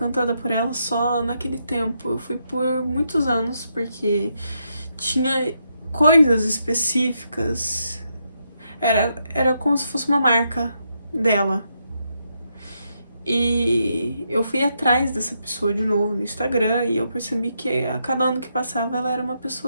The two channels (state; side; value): inverted; both; correlation -0.80